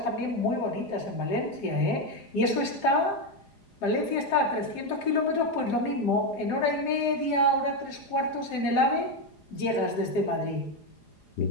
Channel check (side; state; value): right; late; 4.9 ms